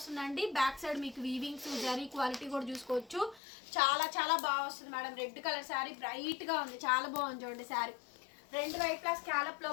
బ్యాక్ సైడ్ మీకు వీవింగ్స్ జరీ క్వాలిటీ కూడా చూసుకోవచ్చు. చాలా చాలా బాగా వస్తుంది madam. Red colour sari bright గా ఉంది, చాలా బాగుంది చూడండి శారీ. రెండు వైపులా స్కాలప్ లో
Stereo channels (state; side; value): drops out; right; at 3.4 s